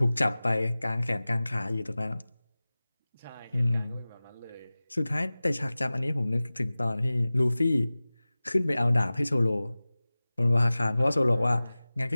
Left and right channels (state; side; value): inverted; both; correlation -0.98